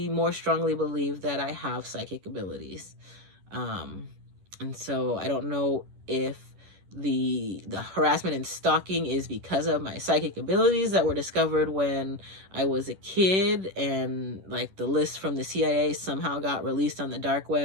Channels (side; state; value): left; late; 11 ms